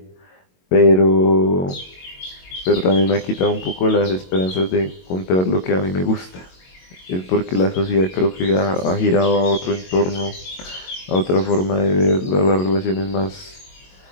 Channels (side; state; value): right; late; 22 ms